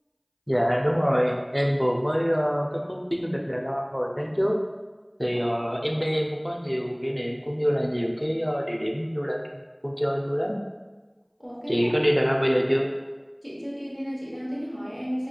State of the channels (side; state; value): both; identical; correlation 1.00